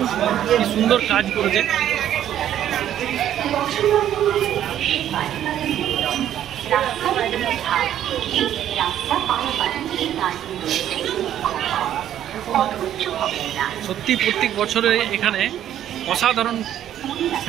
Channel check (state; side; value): quieter; left; 11.1 dB